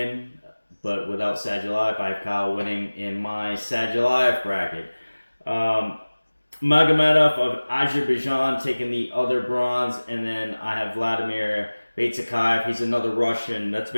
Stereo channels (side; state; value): both; inverted; correlation -1.00